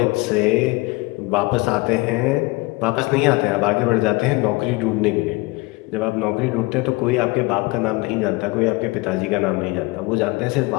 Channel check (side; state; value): right; quieter; 24.1 dB